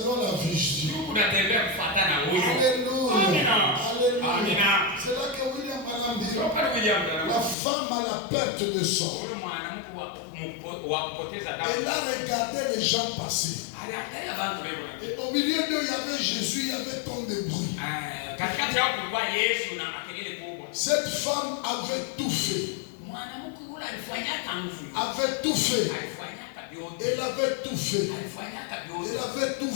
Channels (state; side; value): drops out; right; at 7.6 s